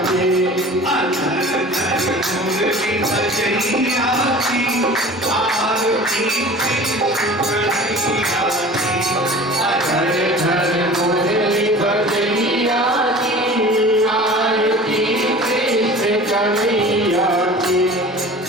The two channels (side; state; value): both; normal; correlation 0.41